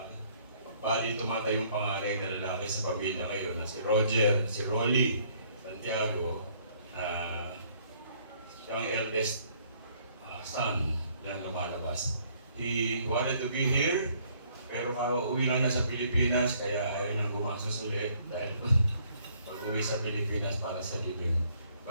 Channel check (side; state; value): both; inverted; correlation -0.64